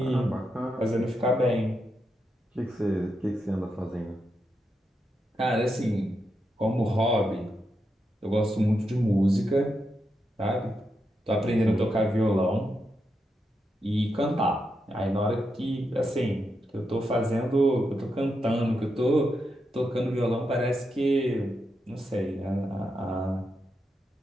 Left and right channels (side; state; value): both; normal; correlation 0.84